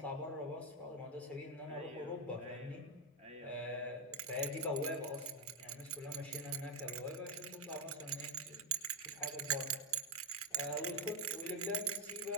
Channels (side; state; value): both; normal; correlation 0.03